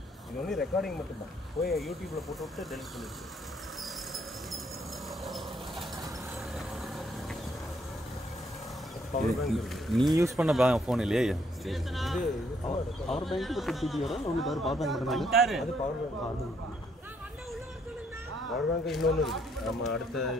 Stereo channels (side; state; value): both; normal; correlation 0.70